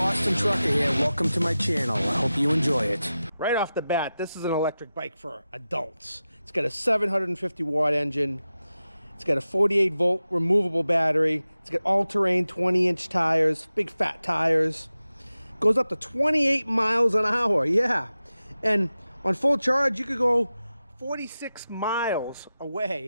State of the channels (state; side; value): inverted; both; correlation -0.94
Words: Trucker here. Welcome to my channel. I hope you enjoy it. Right off the bat, this is an electric bike for adults. It's got a 750 watt engine. It's got a 48 volt removable battery. It's got all-terrain 20-inch tires, big fat tires. Goes up to 28 miles an hour. Yeah. And on full charge, you could go 46 miles